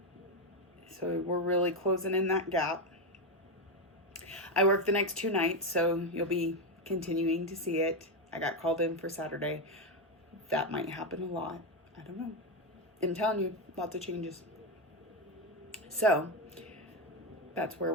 So we're really closing in that gap. I work the next 2 nights, so you'll be continuing to see it. I got called in for Saturday. That might happen a lot. I don't know. I'm telling you, lots of changes. So that's where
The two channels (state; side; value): normal; both; correlation 0.09